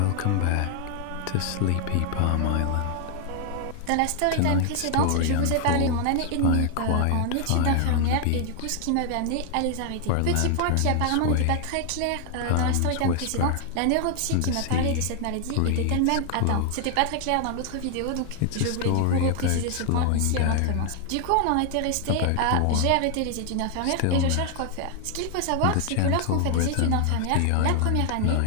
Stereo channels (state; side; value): different; both; correlation 0.00